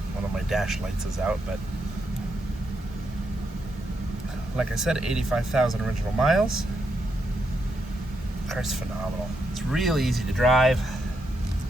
one of my dash lights is out, but like I said, 85,000 original miles. The car's phenomenal. It's really easy to drive.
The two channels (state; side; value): normal; both; correlation 0.81